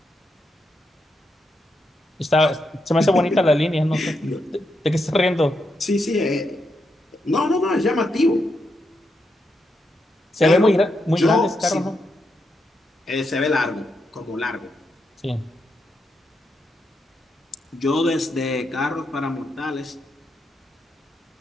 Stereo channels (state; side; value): normal; both; correlation 0.82